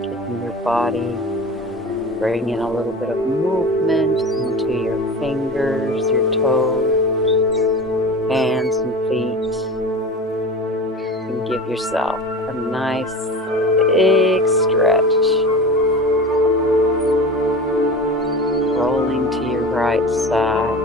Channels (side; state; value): both; normal; correlation 0.33